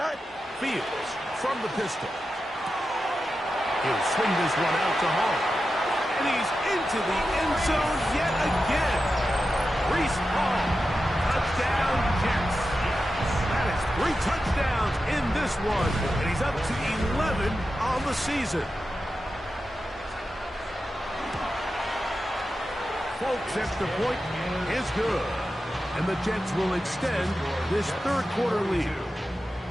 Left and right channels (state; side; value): normal; both; correlation 0.91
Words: Fields from the pistol. He'll swing this one out to Hall. And he's into the end zone yet again. Reese Hall. Touchdown, Jets. That is 3 touchdowns in this one. And he's up to 11 on the season. Folks, extra point is good. And the Jets will extend this third quarter lead.